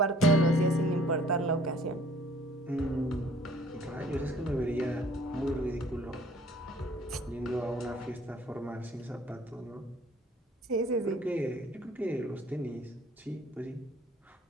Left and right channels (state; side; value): normal; both; correlation 0.55